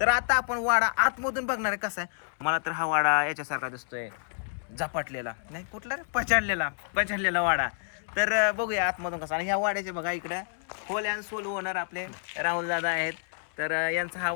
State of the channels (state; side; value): silent; right; 59 dB below the other